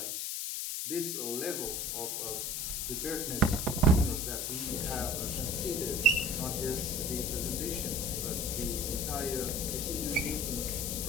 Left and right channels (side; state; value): left; noise; hiss, 1 dB below the sound